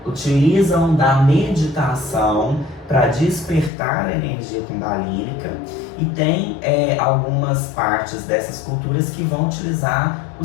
utilizam da meditação para despertar a energia kundalínica, e tem algumas partes dessas culturas que vão utilizar o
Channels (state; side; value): drops out; right; at 3.7 s